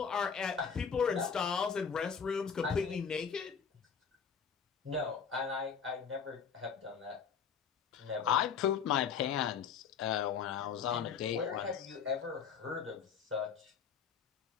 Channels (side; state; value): right; quieter; 6.8 dB